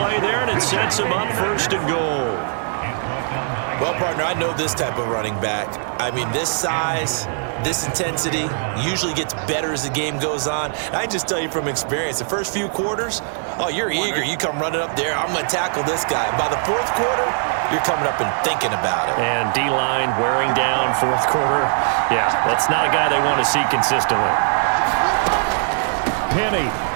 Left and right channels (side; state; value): left; silent; 59 dB below the other